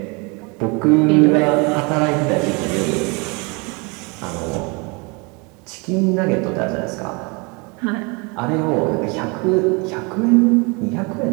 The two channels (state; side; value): quieter; left; 29.8 dB